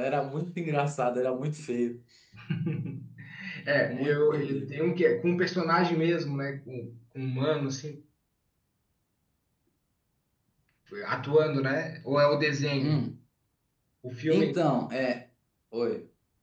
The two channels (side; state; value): both; identical; correlation 1.00